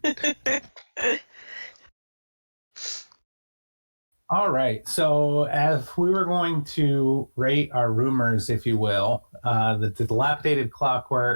All right. So, as we were going to rate our rumors, if you will, the dilapidated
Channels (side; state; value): both; inverted; correlation -1.00